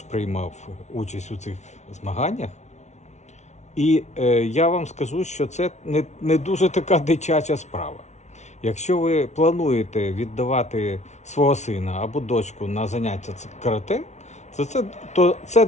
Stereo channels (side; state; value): right; late; 0.33 ms